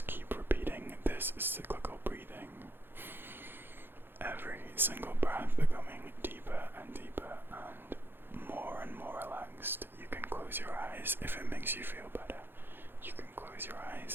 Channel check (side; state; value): left; late; 0.10 ms